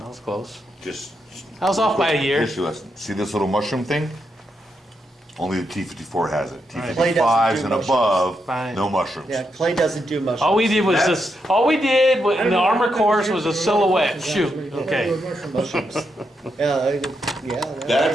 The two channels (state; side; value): normal; both; correlation 0.82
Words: was close. Just I was off by a year. history lesson. See this little mushroom thing? Only the T-54 has it. Right. Clay doesn't T-55s do and mushrooms. above, Fine. no mushrooms. Yeah, Clay doesn't do mushrooms. All we did was this, all we did in the armor course was a silhouette. Shoot, okay. Mushrooms. Yeah, yeah.